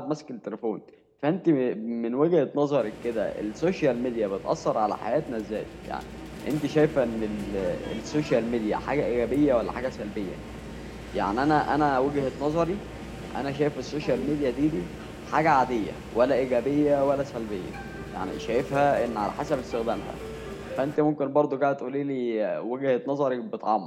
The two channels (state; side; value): identical; both; correlation 1.00